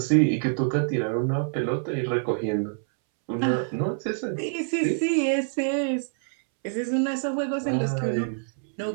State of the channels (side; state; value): left; silent; 61 dB below the other